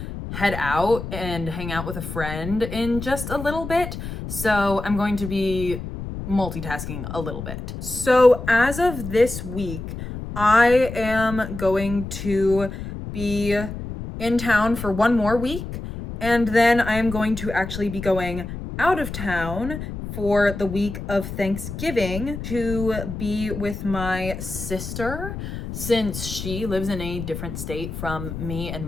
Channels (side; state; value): left; noise; rumble, 8 dB below the sound